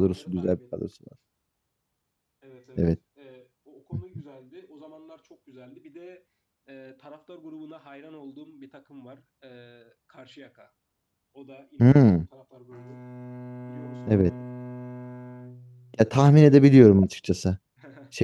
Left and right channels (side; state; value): both; identical; correlation 1.00